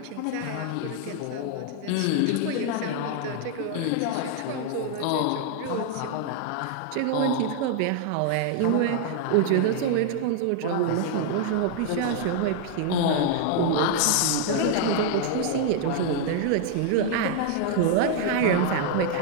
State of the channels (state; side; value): different; both; correlation 0.00